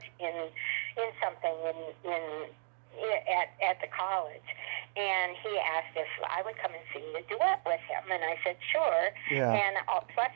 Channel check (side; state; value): left; silent; digital silence